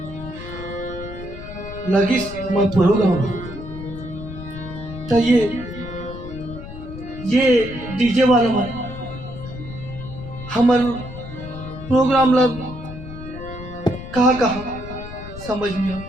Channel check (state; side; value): noise; left; rumble, 12 dB below the sound